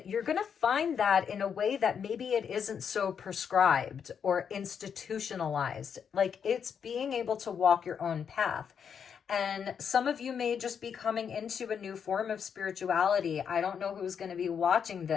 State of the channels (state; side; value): quieter; right; 7.3 dB